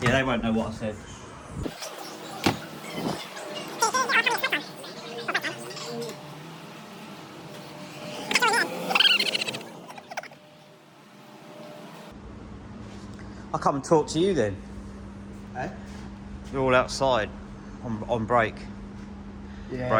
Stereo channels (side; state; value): both; identical; correlation 1.00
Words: they won't know what I said. I'll come and talk to you then. Eh? You're all outside on break. Yeah.